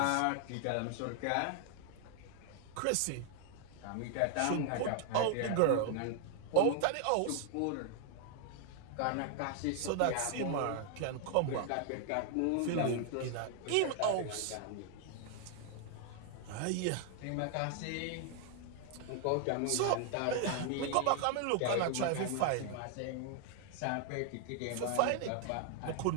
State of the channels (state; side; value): different; both; correlation 0.00